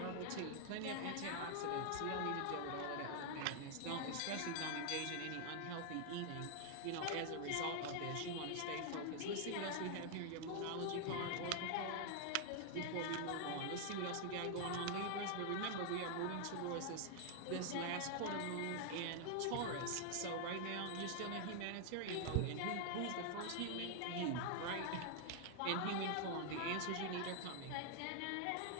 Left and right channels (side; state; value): both; different; correlation 0.00